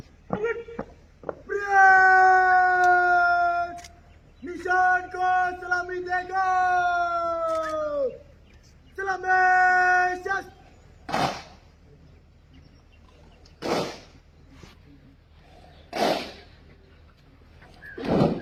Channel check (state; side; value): identical; both; correlation 1.00